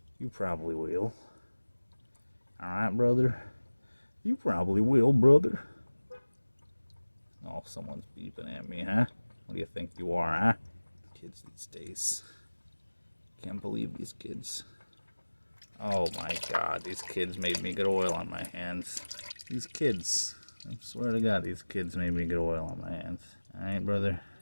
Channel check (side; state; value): both; inverted; correlation -1.00